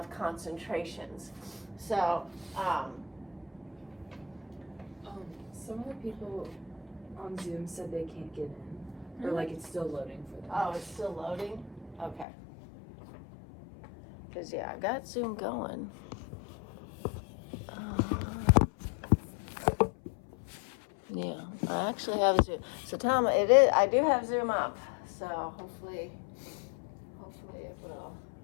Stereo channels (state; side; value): drops out; right; at 12.2 s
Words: concentrations. So some of the people on Zoom said they can't get in. Or like it's still loading for them. Oh, it's still loading? Okay. Because yeah, I got Zoom going. Yeah, I actually have Zoom. So Tom, I do have Zoom up. So hopefully it will